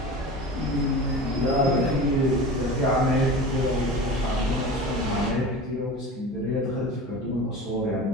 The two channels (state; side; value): normal; both; correlation 0.33